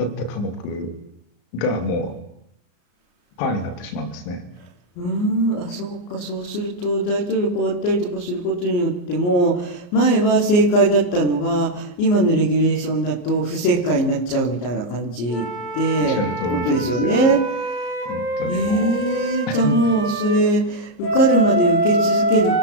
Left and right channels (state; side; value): late; right; 34 ms